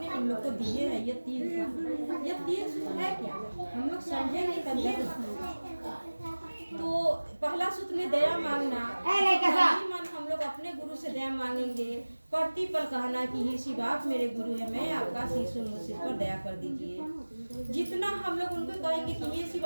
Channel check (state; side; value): inverted; both; correlation -1.00